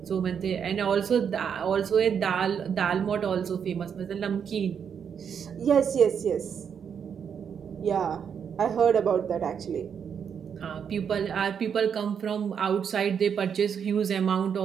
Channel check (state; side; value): quieter; left; 7.4 dB